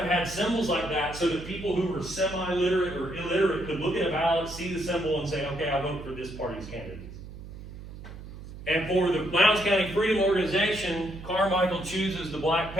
had symbols like that so that people who were semi-literate or illiterate could look at a ballot, see the symbol, and say, okay, I vote for this party's candidate. And for the Lowndes County Freedom Organization, Carmichael chooses the Black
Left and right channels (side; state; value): right; noise; hum, 13 dB below the sound